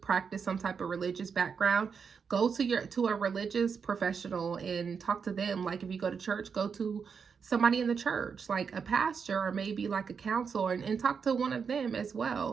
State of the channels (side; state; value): left; quieter; 6.1 dB